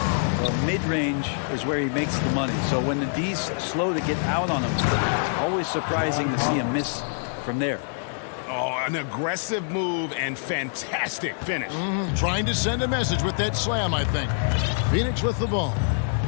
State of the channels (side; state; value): right; silent; digital silence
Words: Well, mid-range is where he makes the money. So when the D's slow to get out on him, it's always surprising to see him miss from there. Oh, an aggressive move and fantastic finish. Trying to send a message with that slam, I think. Phoenix with the ball.